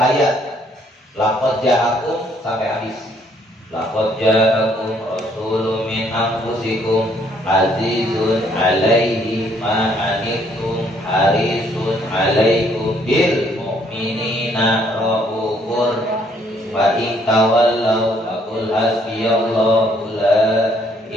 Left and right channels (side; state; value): both; normal; correlation 0.66